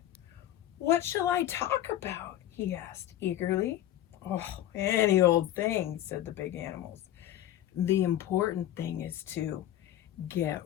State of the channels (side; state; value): right; quieter; 12.8 dB